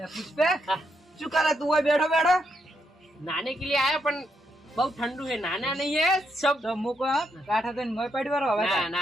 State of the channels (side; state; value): both; normal; correlation 0.79